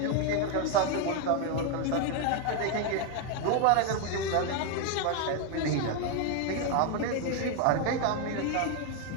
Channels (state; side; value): different; both; correlation 0.01